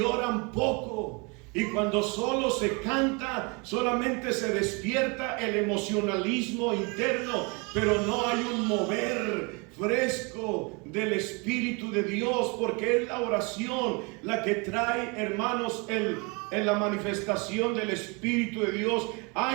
oran poco. Y cuando solo se canta, solamente se despierta el emocionalismo interno, pero no hay un mover fresco del Espíritu de Dios, porque es la oración la que trae, hermanos, en la manifestación del Espíritu de Dios.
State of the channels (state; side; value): quieter; left; 30.4 dB